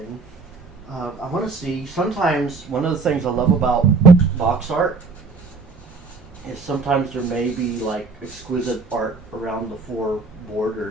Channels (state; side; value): quieter; left; 4.3 dB